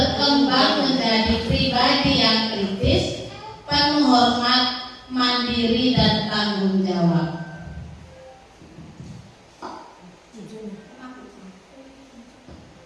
menjadi pribadi yang kritis, penuh hormat, mandiri, dan tanggung jawab.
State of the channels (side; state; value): both; identical; correlation 1.00